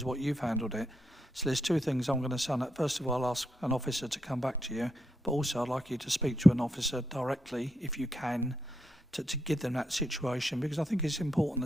what you've handled it. So there's two things I'm going to say. First of all, I'll ask an officer to come back to you, but also I'd like you to speak to an officer directly, if you can, to give them that situation, because I think it's important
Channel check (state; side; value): normal; both; correlation 0.80